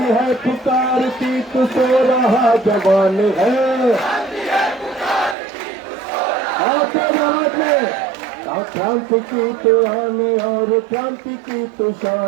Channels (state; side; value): drops out; left; at 5.4 s